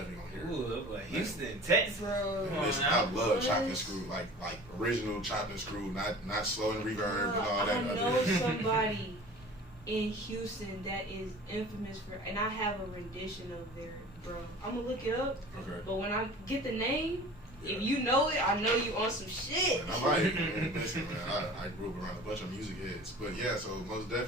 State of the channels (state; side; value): normal; both; correlation 0.42